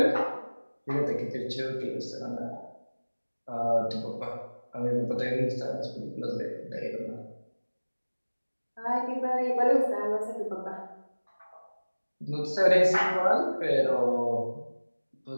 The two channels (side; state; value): both; inverted; correlation -1.00